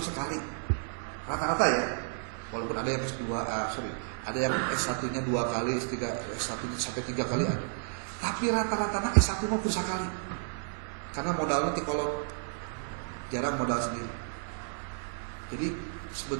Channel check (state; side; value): silent; left; digital silence